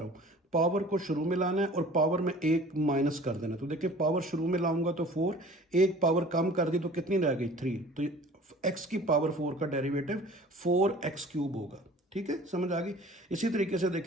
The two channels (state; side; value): normal; both; correlation 0.46